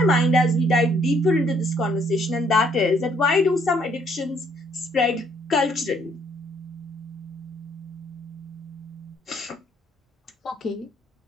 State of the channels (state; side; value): normal; both; correlation 0.67